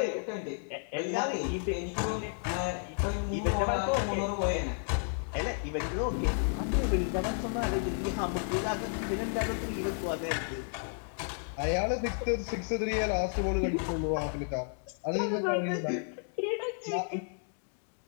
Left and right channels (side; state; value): right; silent; 56 dB below the other